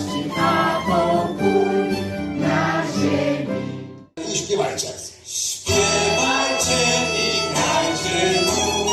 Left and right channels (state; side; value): identical; both; correlation 1.00